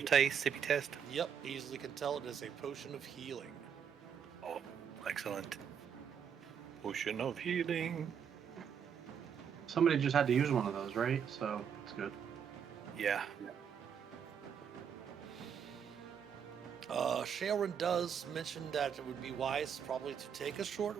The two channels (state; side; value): quieter; left; 7.7 dB